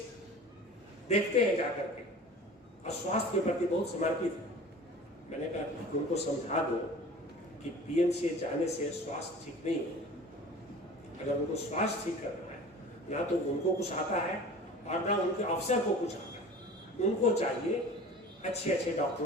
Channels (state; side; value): normal; both; correlation 0.41